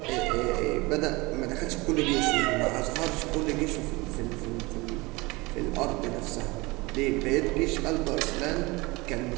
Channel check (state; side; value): quieter; left; 23.7 dB